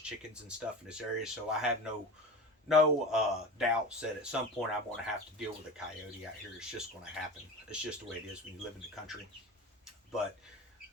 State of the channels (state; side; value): normal; both; correlation 0.30